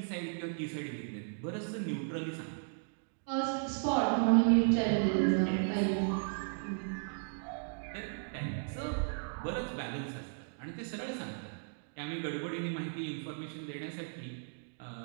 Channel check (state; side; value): silent; left; digital silence